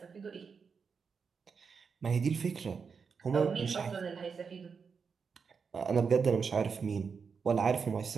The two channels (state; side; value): quieter; left; 5.7 dB